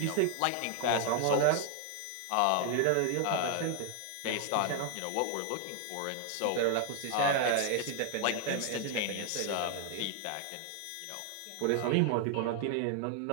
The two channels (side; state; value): both; different; correlation 0.00